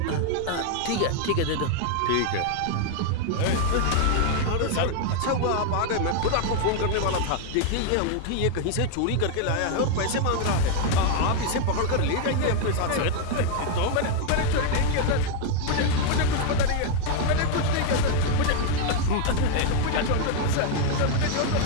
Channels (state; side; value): different; both; correlation 0.00